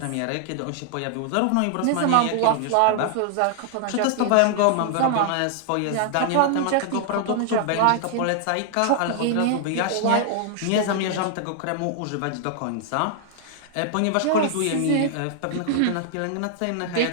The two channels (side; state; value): both; different; correlation 0.00